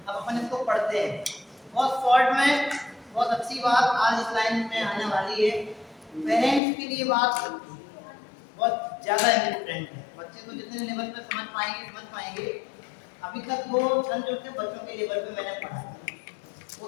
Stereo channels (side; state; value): right; drops out; at 6.6 s